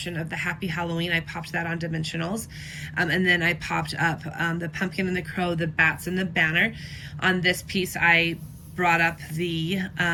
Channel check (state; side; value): identical; both; correlation 1.00